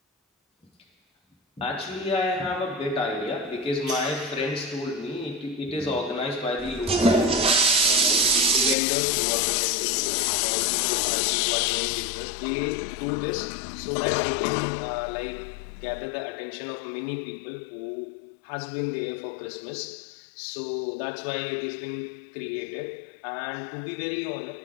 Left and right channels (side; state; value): right; drops out; at 8.8 s